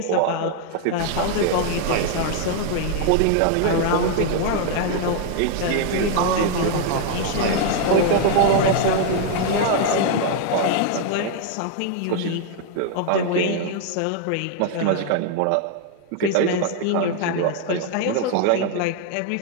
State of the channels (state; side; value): different; both; correlation 0.00